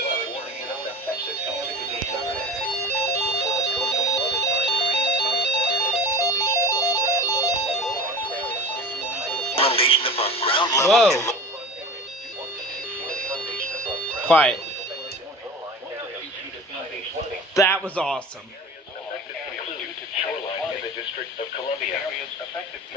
Whoa. Quiet. That was awesome.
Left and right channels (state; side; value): normal; both; correlation 0.34